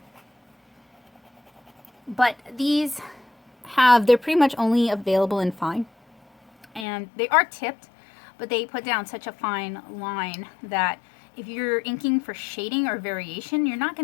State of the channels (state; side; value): drops out; right; at 6.9 s